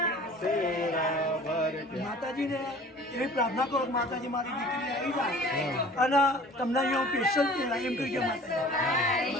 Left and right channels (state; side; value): normal; both; correlation 0.46